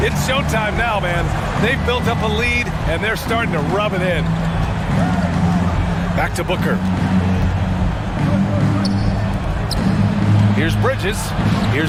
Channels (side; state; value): both; identical; correlation 1.00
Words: It's showtime now, man. They've built up a lead, and they're starting to rub it in. Back to Booker. Here's Bridges.